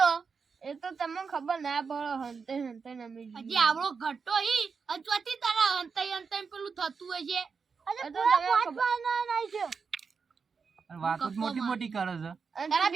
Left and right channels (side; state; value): left; quieter; 5.4 dB